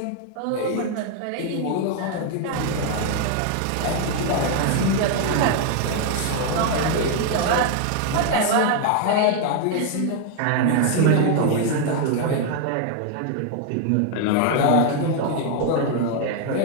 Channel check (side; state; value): both; different; correlation 0.00